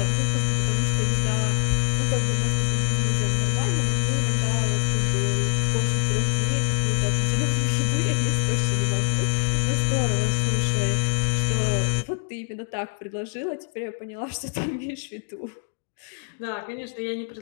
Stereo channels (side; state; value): right; silent; 62 dB below the other